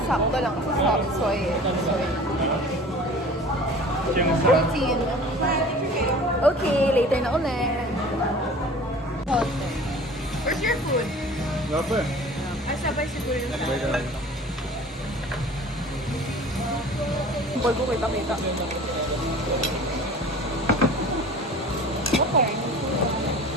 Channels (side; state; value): both; normal; correlation 0.43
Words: Sakto lang sa subsoy. Siyang sa... Protein. Okay, later na ulit. Where's your food? Gapa. Ay, sabay siguro yun. Boy ko kita. Okay.